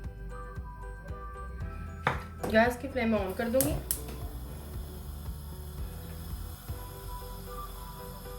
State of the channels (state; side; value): identical; both; correlation 1.00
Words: गैस की फ्लेम ऑन कर दूंगी।